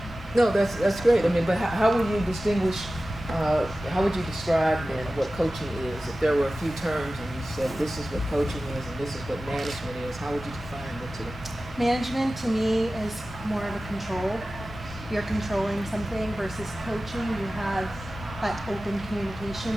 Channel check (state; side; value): normal; both; correlation 0.95